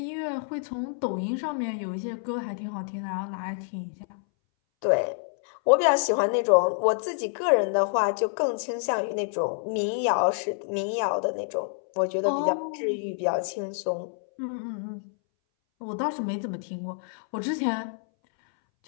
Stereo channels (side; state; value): right; silent; 60 dB below the other